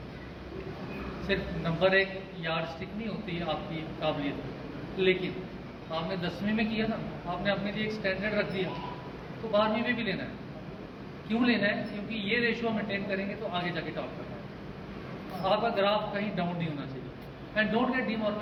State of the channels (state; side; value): identical; both; correlation 1.00